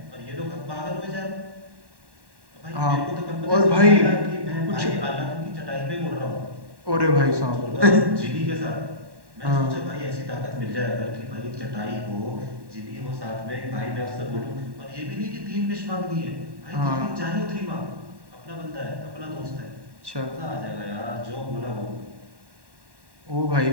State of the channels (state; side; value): late; left; 1.1 ms